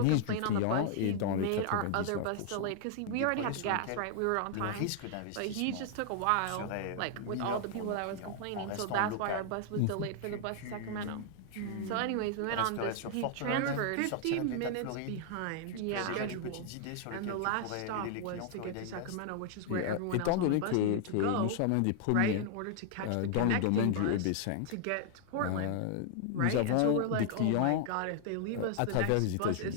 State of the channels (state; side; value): different; both; correlation 0.00